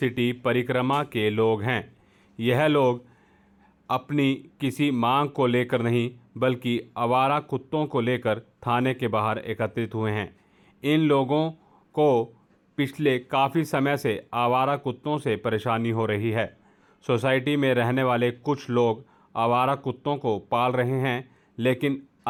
परिक्रमा के लोग हैं। यह लोग अपनी किसी मांग को लेकर नहीं बल्कि आवारा कुत्तों को लेकर थाने के बाहर एकत्रित हुए हैं। इन लोगों को पिछले काफ़ी समय से आवारा कुत्तों से परेशानी हो रही है। सोसाइटी में रहने वाले कुछ लोग आवारा कुत्तों को पाल रहे हैं, लेकिन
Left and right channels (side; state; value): both; identical; correlation 1.00